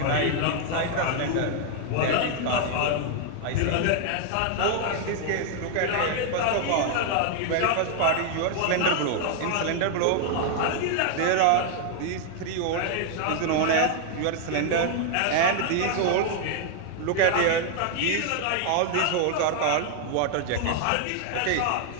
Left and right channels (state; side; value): different; both; correlation 0.00